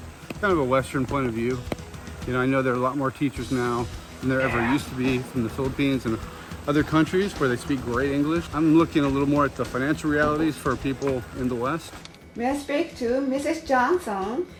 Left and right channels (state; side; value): identical; both; correlation 1.00